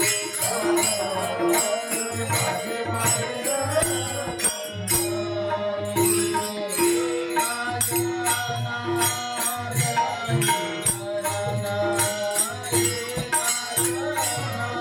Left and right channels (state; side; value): identical; both; correlation 1.00